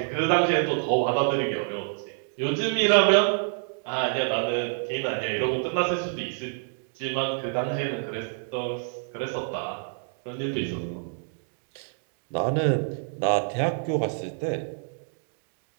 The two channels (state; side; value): silent; left; 60 dB below the other